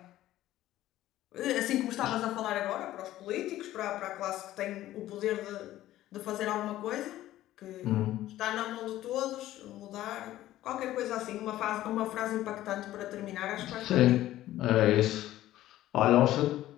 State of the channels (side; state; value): right; quieter; 14.4 dB